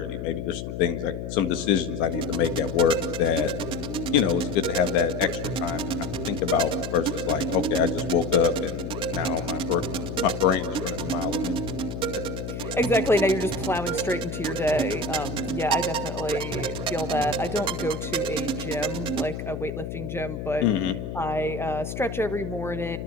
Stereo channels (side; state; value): left; noise; hum, 6 dB below the sound